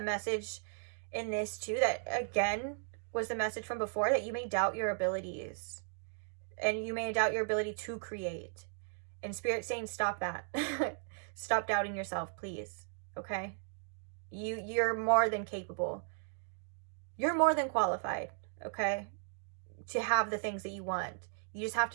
message in this too that, again, was the message from before, that you may doubt your abilities and you may doubt your ability to create. And Spirit's saying, stop that. Stop doubting yourself, please. Okay? You're more than capable. You're more than qualified, okay, to have the things that you want. You just have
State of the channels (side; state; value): left; silent; digital silence